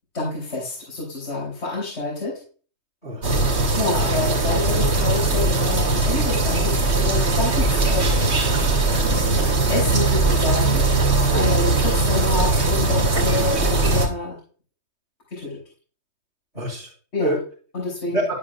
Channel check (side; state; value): right; late; 3.2 ms